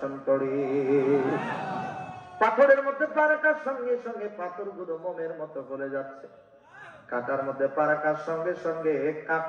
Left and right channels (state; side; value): identical; both; correlation 1.00